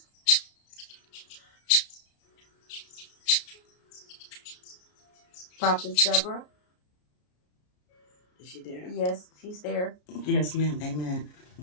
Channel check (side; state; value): right; late; 33 ms